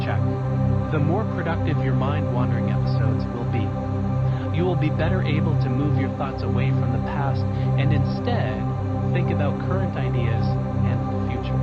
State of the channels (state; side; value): identical; both; correlation 1.00